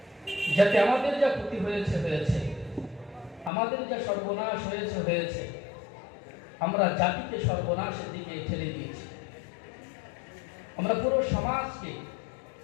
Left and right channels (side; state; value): right; drops out; at 3.5 s